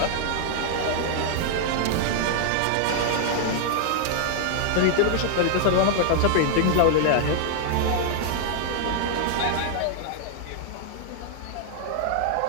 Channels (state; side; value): different; both; correlation 0.00